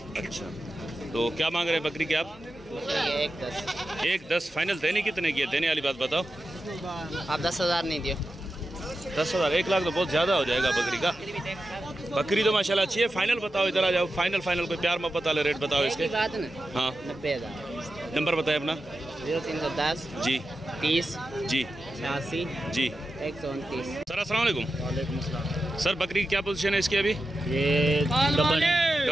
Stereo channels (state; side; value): normal; both; correlation 0.91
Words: अच्छा, तो क्या मांग रहे हैं बकरी के आप? 1-10 फाइनल। देने कितने की है? देने वाली बात बताओ। आप 10,000 नहीं दियो। 10,000? 1 लाख तो बहुत ज़्यादा हो जाएगा बकरी का। बकरी तो माशाल्लाह अच्छी है। फाइनल बताओ, इधर आ जाओ। फाइनल कोई प्यार मोहब्बत वाले रेट बताओ इसके। बात ना। हाँ 90,000। नंबर बताए अपना। 0310 जी 30 जी 86 जी 129। सर अस्सलाम वालेकुम। वालेकुम अस्सलाम। सर बकरी की क्या पोजीशन है इसकी अभी? ये